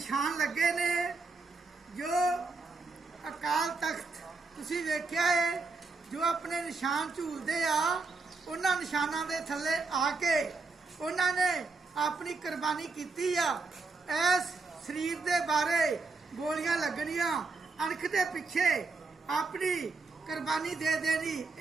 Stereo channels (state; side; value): quieter; left; 4.0 dB